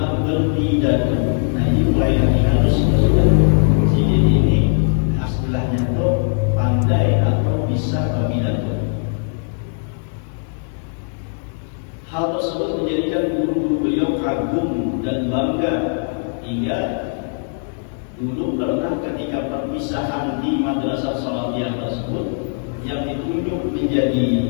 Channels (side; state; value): right; silent; 59 dB below the other